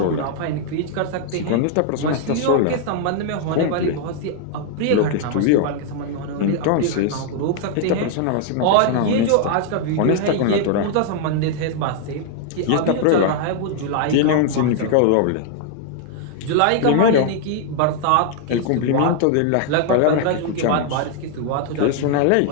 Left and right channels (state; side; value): different; both; correlation 0.00